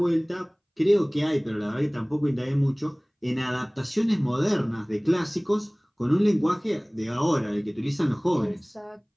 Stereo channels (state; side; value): identical; both; correlation 1.00